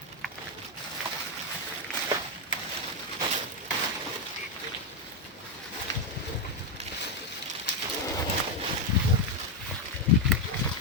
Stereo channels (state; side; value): normal; both; correlation 0.05